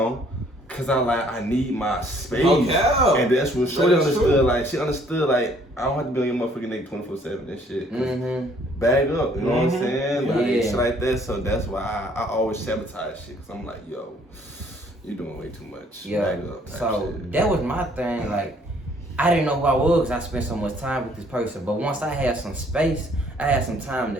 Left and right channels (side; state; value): both; normal; correlation 0.61